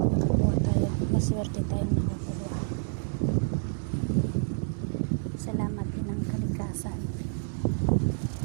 tayo, maswerte tayong nakakuha. Salamat din ng kalikasan.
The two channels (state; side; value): silent; left; digital silence